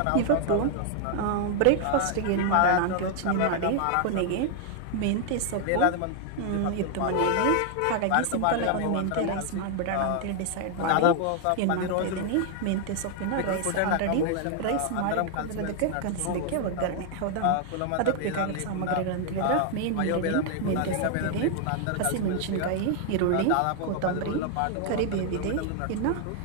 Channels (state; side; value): different; both; correlation 0.00